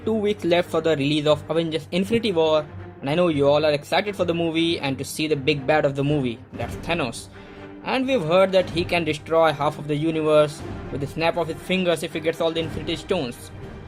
weeks left for the release of Avengers Infinity War, and I know you all are excited for the movie and to see the big bad of the movie, that's Thanos. And we've heard that he can destroy half of the universe with the snap of his fingers if he gets all the Infinity Stones.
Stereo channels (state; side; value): identical; both; correlation 1.00